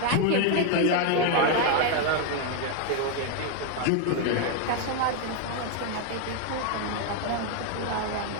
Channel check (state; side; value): different; both; correlation 0.01